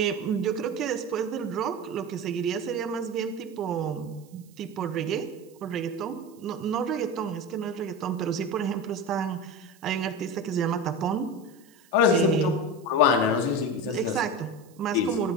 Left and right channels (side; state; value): right; noise; hiss, 28 dB below the sound